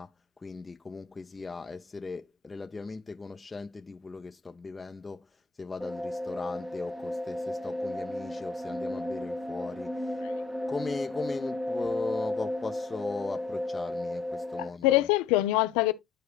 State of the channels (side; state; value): right; quieter; 5.5 dB